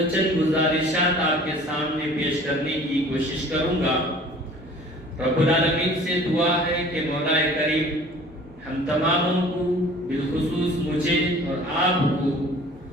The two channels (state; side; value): normal; both; correlation 0.48